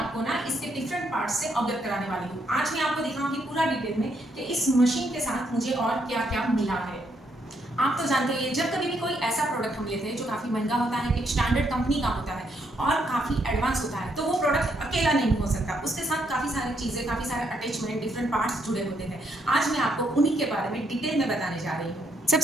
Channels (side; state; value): both; normal; correlation 0.75